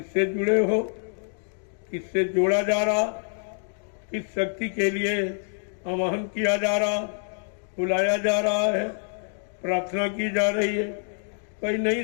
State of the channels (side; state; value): right; silent; 61 dB below the other